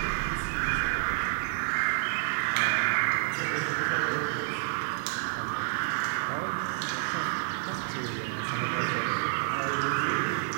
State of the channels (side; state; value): left; silent; digital silence